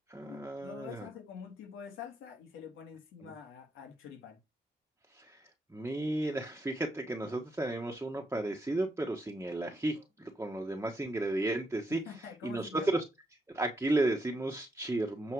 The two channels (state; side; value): normal; both; correlation 0.80